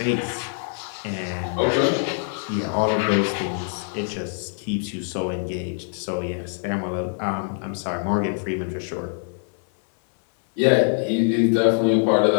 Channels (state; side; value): silent; right; 63 dB below the other